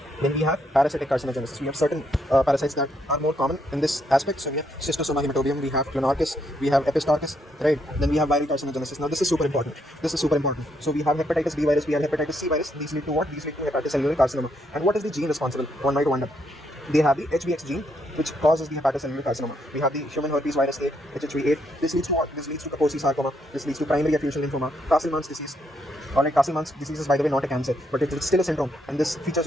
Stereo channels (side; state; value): both; normal; correlation 0.75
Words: Then we have parasitic carcinogenesis. We have certain parasites that are more common in this aspect. So we have Schistosoma hematobium, we have Clonorchis, we have Epistarchus, right? Then we have viral carcinogenesis. Now this is super important. So we have hepatitis B virus, we have hepatitis C virus. These lead to what? These lead to hepatocellular carcinoma. And what is the gene responsible? One might wonder. They have the HBX gene, which causes the hepatocellular carcinoma. We have the human herpes virus 8, HHV8. This leads to what? This leads to Kaposi sarcoma. This leads to primary effusion lymphoma, Castleman's disease. Alright, Castleman's disease is, by the way, not a cancer, but it's still a syndrome. And this features